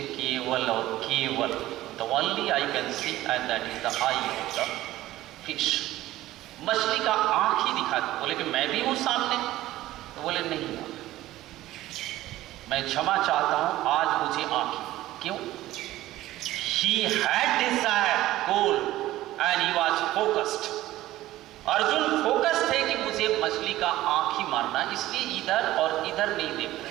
केवल और केवल the only I can see and that is the I of the fish, मछली का आंख ही दिखा। बोले कि मैं भी हूं सामने? तो बोले नहीं, मैं क्षमा चाहता हूं, आज मुझे आंख। क्यों? He had desired goal and he was focused. Arjun focus थे कि मुझे मछली का आंख ही मारना, इसलिए इधर और इधर नहीं देख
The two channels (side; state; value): left; quieter; 15.6 dB